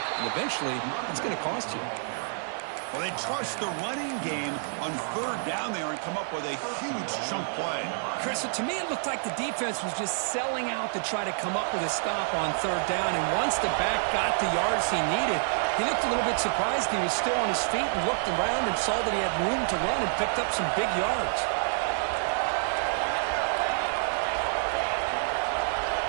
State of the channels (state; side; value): silent; left; digital silence